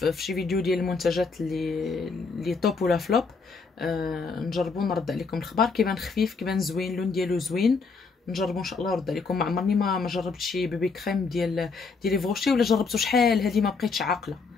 شي فيديو ديال المنتجات اللي توب ولا فلوب. نجربو نرد عليكم الخبار. كيبان خفيف، كيبان زوين، اللون ديالو زوين. نجربو ان شاء الله نرد عليكم. ما عمرني ما جربت شي بيبي كريم ديال فوشي، ولا جربته شحال هذه ما بقيتش عاقله.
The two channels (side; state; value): right; quieter; 4.6 dB